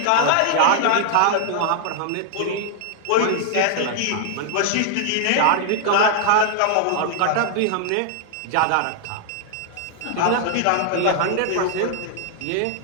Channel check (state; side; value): different; both; correlation 0.00